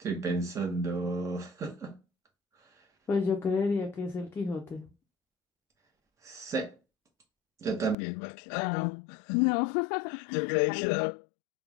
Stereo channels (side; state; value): right; drops out; at 8.0 s